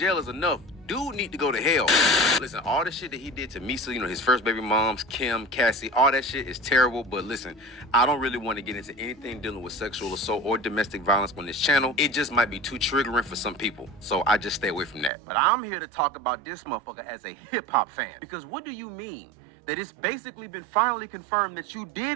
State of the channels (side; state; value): left; drops out; at 15.1 s